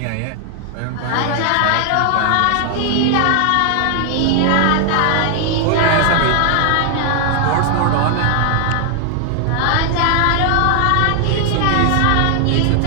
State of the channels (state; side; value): different; both; correlation 0.00